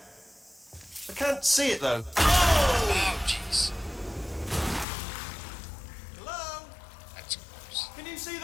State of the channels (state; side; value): drops out; right; at 4.9 s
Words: I can't see it though. Oh, jeez. Hello? That's gross. Can you see